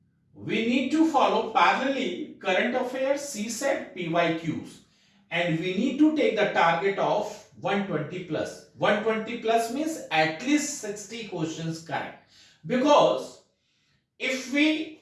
we need to follow parallelly current affairs, CSET, PYQs, and we need to take the target of 120 plus. 120 plus means at least 60 questions correct. Because if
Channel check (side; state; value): both; identical; correlation 1.00